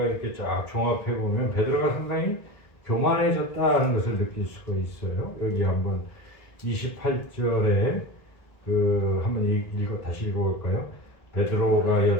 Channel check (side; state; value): right; late; 1.5 ms